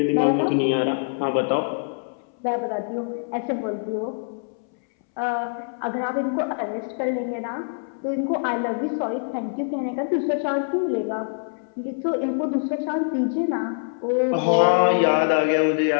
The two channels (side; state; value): right; silent; 62 dB below the other